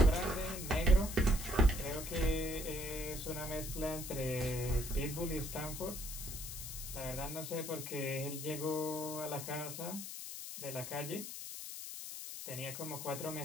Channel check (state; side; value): noise; left; hiss, 8 dB below the sound